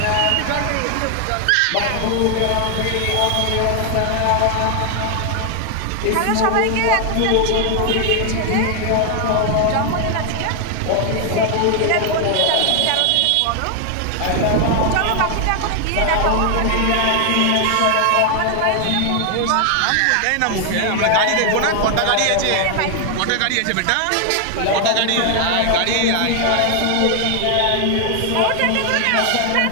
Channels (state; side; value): different; both; correlation 0.00